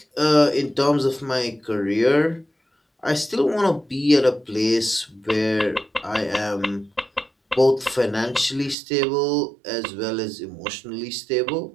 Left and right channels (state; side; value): drops out; left; at 8.8 s